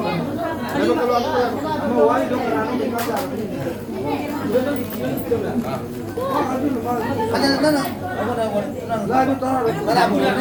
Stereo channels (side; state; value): both; identical; correlation 1.00